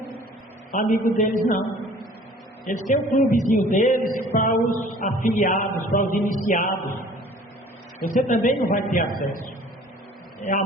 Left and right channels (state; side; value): normal; both; correlation 0.50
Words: amigo deles, não. Eles têm um clubezinho deles para os afiliados, para os iniciados. Você também não vai ter acesso. Há